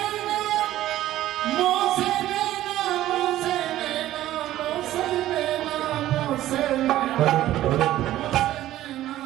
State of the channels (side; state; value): left; quieter; 14.1 dB